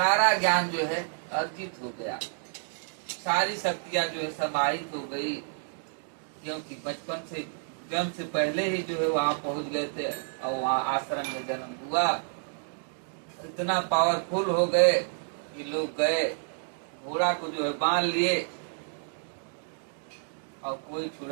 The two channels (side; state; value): left; silent; digital silence